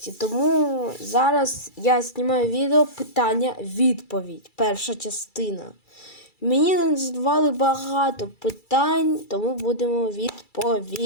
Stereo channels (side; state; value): right; late; 2.3 ms